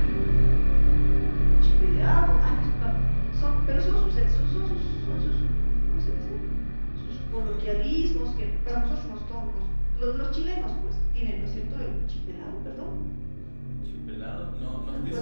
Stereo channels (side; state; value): both; inverted; correlation -1.00